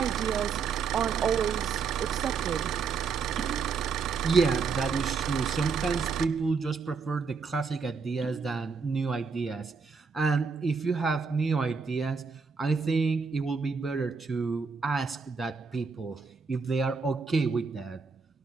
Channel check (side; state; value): left; quieter; 5.3 dB